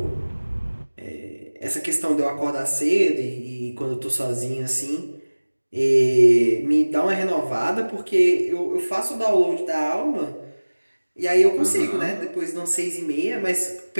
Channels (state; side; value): inverted; both; correlation -1.00